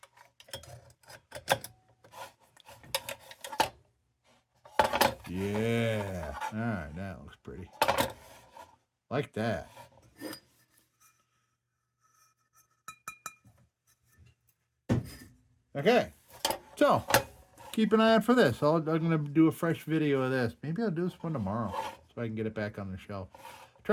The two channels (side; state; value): both; identical; correlation 1.00